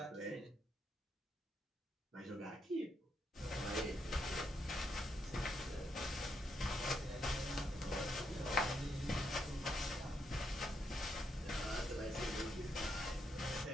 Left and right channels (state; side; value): normal; both; correlation 0.78